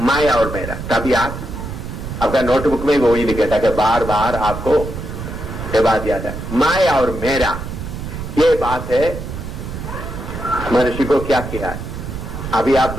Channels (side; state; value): right; noise; rumble, 8 dB below the sound